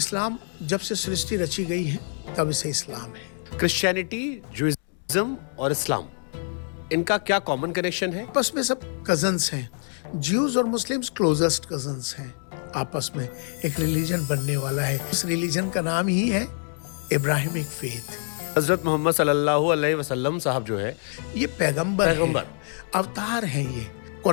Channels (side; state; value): right; silent; 58 dB below the other